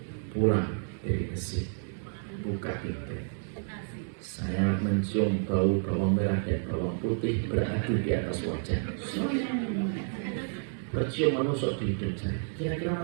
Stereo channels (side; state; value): left; silent; 58 dB below the other